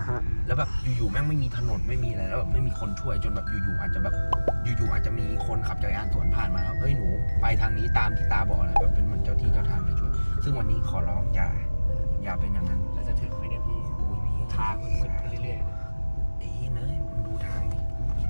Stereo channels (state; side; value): inverted; both; correlation -1.00